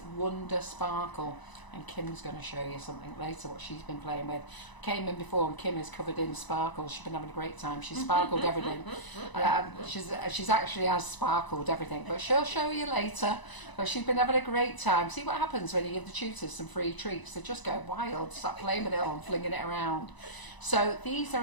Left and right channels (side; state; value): right; late; 1.0 ms